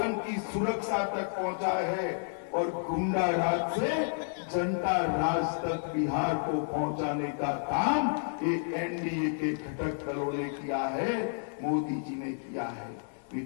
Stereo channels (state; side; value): silent; right; digital silence